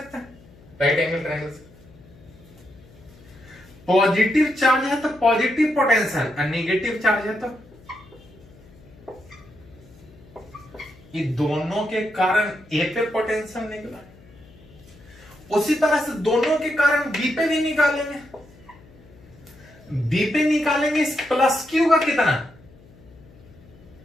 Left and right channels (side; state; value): left; noise; hum, 24 dB below the sound